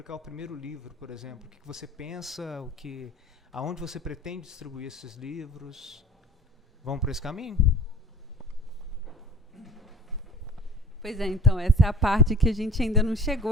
o primeiro livro, por exemplo. O que você pensa, aonde você pretende distribuir esses livros? Vamos por esse caminho? Pois é, então, essa é a parte que a gente ainda não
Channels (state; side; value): normal; both; correlation 0.42